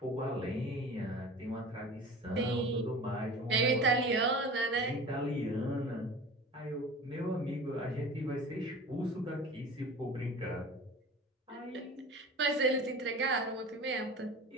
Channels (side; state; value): both; normal; correlation 0.37